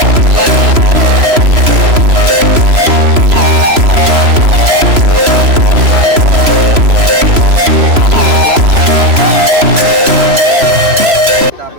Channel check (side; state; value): left; late; 3.0 ms